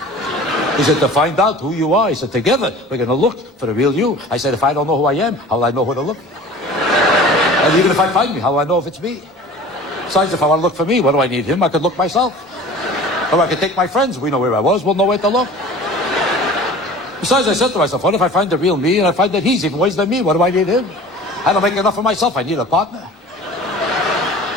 He said, to find out who you are. He said, together we're going to look for the real you. I said, if I don't know who I am, how will I know who to look for? And even if I find me, how will I know if it's me? Besides, if I want to look for me, what do I need him? I could look myself. Or I could take my friends. We know where I was. We'll know where to look. Besides, I said to myself, what if I find the real me and I find that he's even worse than me? What do I need him? I don't make enough of myself. I need a partner.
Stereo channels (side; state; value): both; normal; correlation 0.42